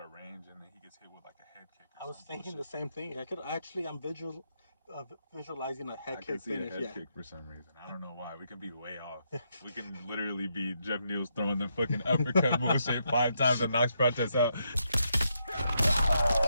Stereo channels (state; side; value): inverted; both; correlation -0.79